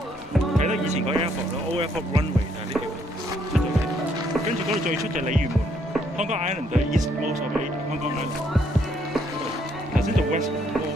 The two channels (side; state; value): both; normal; correlation 0.69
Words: 德以前個 airport 咯 ，Old Airport Runway 就係呢條出咗嚟。跟住嗰度最出就係鯉魚門 ，Hong Kong Island 就係 East Most of Hong Kong Island。頭先做 West